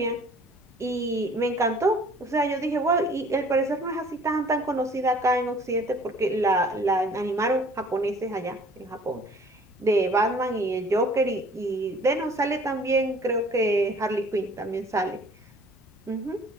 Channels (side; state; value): both; normal; correlation 0.52